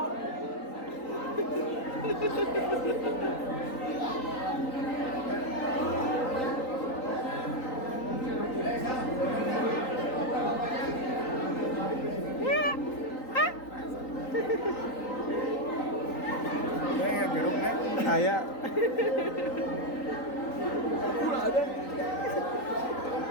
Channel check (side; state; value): right; late; 3.9 ms